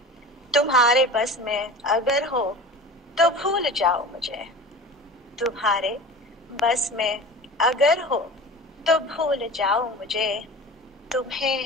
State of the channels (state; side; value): normal; both; correlation 0.36